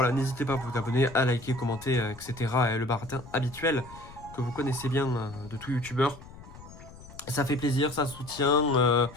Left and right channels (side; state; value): left; noise; rumble, 18 dB below the sound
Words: n'hésitez pas à vous abonner, à liker, commenter, etc. Et le baratin habituel que vous connaissez bien de tout youtubeur. Ça fait plaisir, ça soutient.